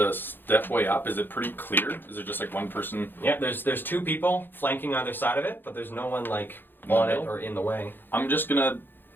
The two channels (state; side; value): late; right; 0.096 ms